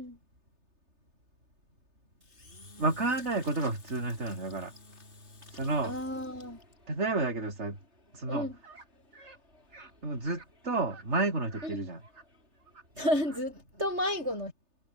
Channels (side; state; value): left; late; 3.3 ms